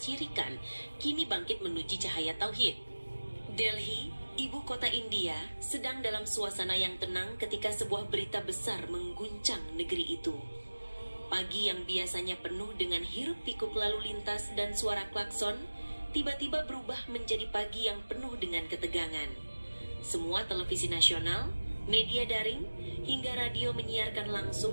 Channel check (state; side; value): inverted; both; correlation -1.00